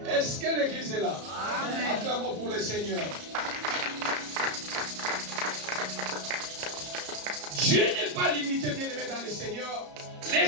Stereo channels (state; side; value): late; left; 34 ms